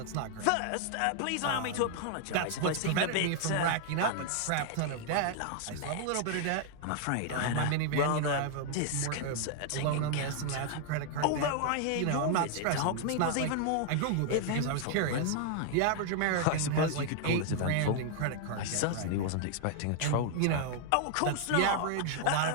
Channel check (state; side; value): different; both; correlation 0.00